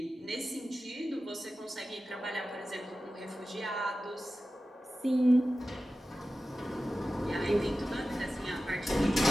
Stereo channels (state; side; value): normal; both; correlation 0.94